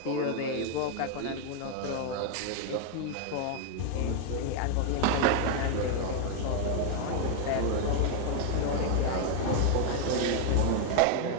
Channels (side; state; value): both; different; correlation 0.00